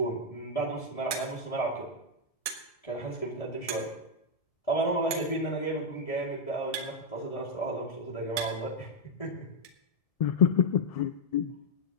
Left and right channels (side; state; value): right; late; 1.7 ms